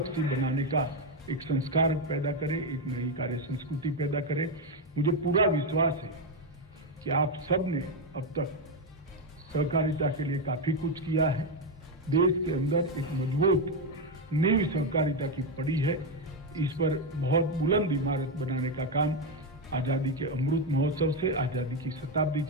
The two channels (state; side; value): normal; both; correlation 0.07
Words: बनाने का एक संस्कार पैदा करें, एक नई कार्य संस्कृति पैदा करें। मुझे पूरा विश्वास है कि आप सब ने अब तक सहकारिता के लिए काफी कुछ किया है। देश के अंदर एक मजबूत नींव सहकारिता की पड़ी है। इस पर बहुत बुलंद इमारत बनाने का काम आजादी के अमृत महोत्सव से, आजादी की शताब्दी